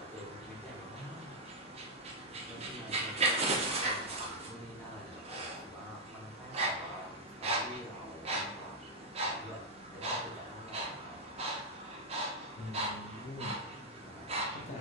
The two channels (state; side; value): normal; both; correlation -0.02